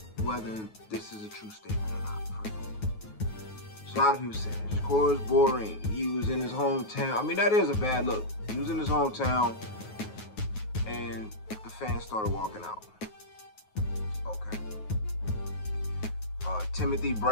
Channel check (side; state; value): right; late; 9.4 ms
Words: whether this is a true statement or not. First of all, so a lot of people say SHAKUR is boring. He was in his hometown. I mean, that is a bad look. He was in his hometown, and the fans started walking out. Okay. Timothy